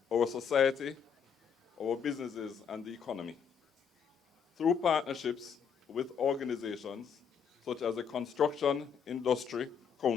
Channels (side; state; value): right; quieter; 7.0 dB